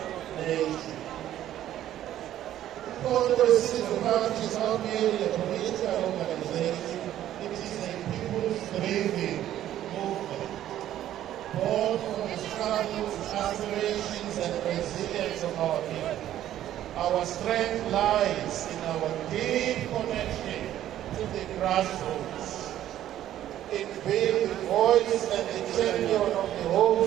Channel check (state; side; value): quieter; left; 12.2 dB